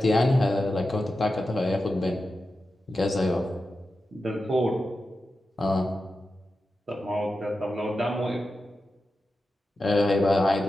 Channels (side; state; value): both; normal; correlation 0.91